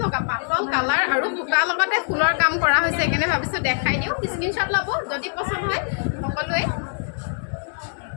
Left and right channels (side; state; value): right; silent; 63 dB below the other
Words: লগা পাতল কালাৰ আৰু বুটাৰ লগতে ফুলৰ কাম কৰা হৈছে সেইকাৰণে ভাবিছোঁ দেখাই দিওঁ স্ক্ৰীনশ্বট ল'ব যদি পচন্দ হয় সকলোৱে